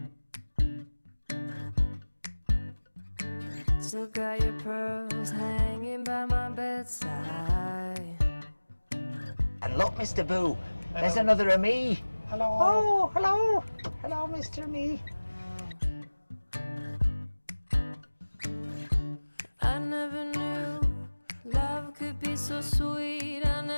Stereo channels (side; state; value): both; inverted; correlation -1.00